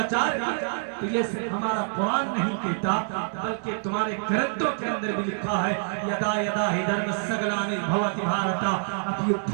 کیا, تو یہ صرف ہمارا قرآن نہیں کہتا بلکہ تمہارے گرنتھوں کے اندر بھی لکھا ہے, یدا یدا ہی دھرمسگلانی بھوتی بھارتا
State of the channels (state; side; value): silent; left; digital silence